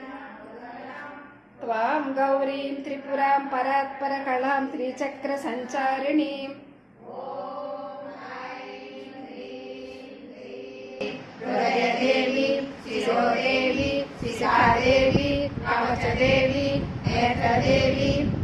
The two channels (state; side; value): identical; both; correlation 1.00